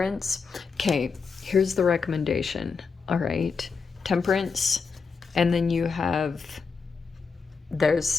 Okay, here's the recommendation. All right, Temperance. And then you have,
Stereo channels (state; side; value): quieter; right; 5.2 dB